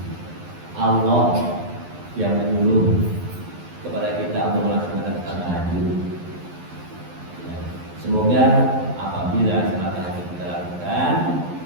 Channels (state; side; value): late; left; 11 ms